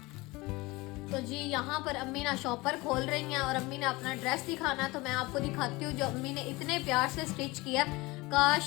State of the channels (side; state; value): right; quieter; 22.3 dB